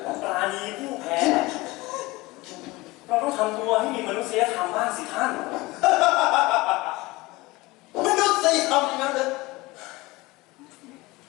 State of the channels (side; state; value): right; quieter; 21.4 dB